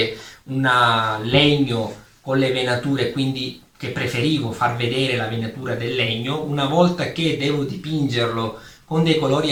un legno con le venature, quindi che preferivo far vedere la venatura del legno, una volta che devo dipingerlo con dei colori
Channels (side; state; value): both; identical; correlation 1.00